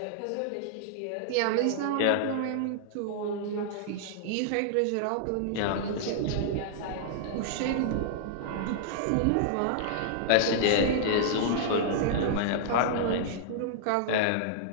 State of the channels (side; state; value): both; different; correlation -0.01